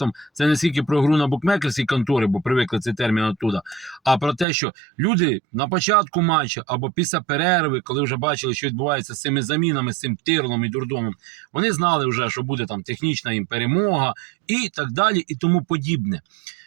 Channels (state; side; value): drops out; left; at 4.5 s